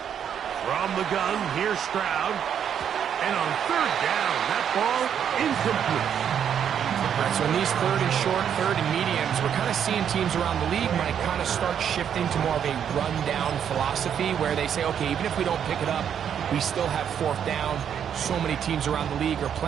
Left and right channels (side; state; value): left; quieter; 8.6 dB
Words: From the gun, here's Stroud. And on third down, that ball incomplete. All right, so in these third and short, third and mediums, we're kind of seeing teams around the league might kind of start shifting to more of a run-down philosophy where they say, okay, even if we don't pick it up, we still have fourth down. So many teams around the league are